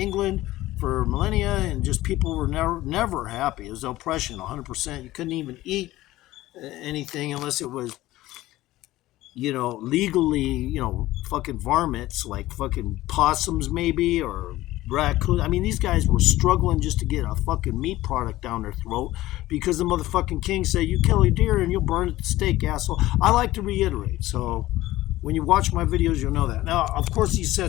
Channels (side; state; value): right; quieter; 16.5 dB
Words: for millennia, and just people were never happy. It was oppression, 100%. You couldn't even eat anything unless it was, legally, fucking varmints, like fucking possums maybe, or raccoons. I mean, these guys were struggling just to get a fucking meat product down their throat because the motherfucking king said, you kill a deer and you'll burn it at the stake, asshole. I like to reiterate. So when you watch my videos, you'll know that. Now, of course, these